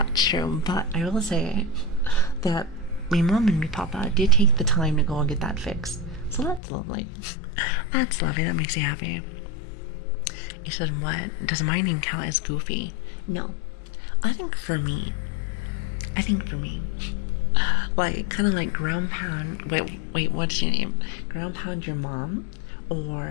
true, but I will say that my mom and my papa did take the time to go and get that fixed. So that's lovely. That's lovely. That makes you happy. He said, what? Does my name count as goofy? No. I think for me, like, kind of like ground pound, wait, what's your name? Ground pound your mom?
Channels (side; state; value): right; drops out; at 6.6 s